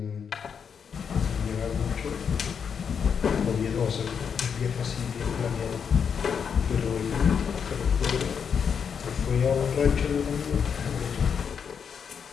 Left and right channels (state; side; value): quieter; right; 6.9 dB